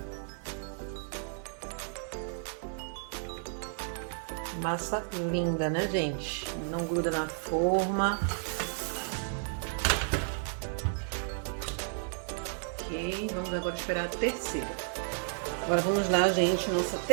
Massa linda, né, gente? Não gruda na forma. Ok, vamos agora esperar a terceira. Agora vamos lá, gente, nossa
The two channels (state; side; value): silent; left; digital silence